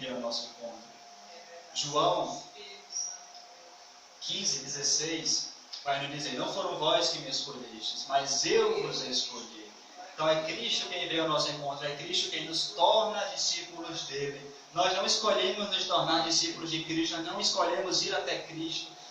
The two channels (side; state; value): both; identical; correlation 1.00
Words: o nosso encontro. João 15:16 vai nos dizer: não foram vós que me escolhestes, mas eu vos escolhi. Então é Cristo quem veio ao nosso encontro, é Cristo quem nos torna discípulos dele. Nós não escolhemos nos tornar discípulos de Cristo, nós não escolhemos ir até Cristo,